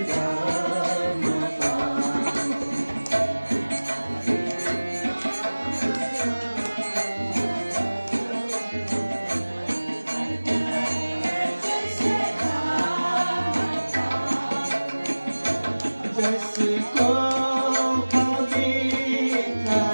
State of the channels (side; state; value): both; inverted; correlation -1.00